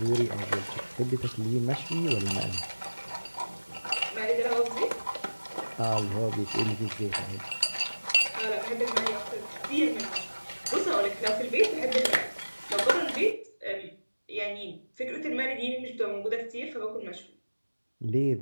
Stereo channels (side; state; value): both; inverted; correlation -1.00